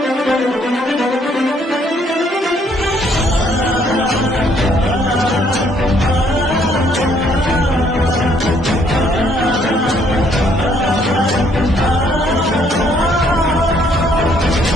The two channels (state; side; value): normal; both; correlation 0.66